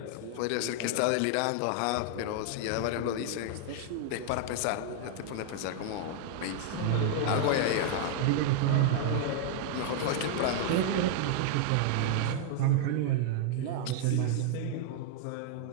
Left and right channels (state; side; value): different; both; correlation 0.00